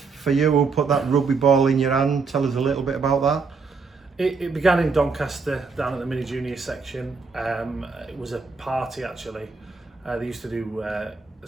you? Who put that rugby ball in your hand? Tell us a little bit about that. It began in Doncaster, down at the mini junior section. It was a party actually. They used to do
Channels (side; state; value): left; quieter; 4.7 dB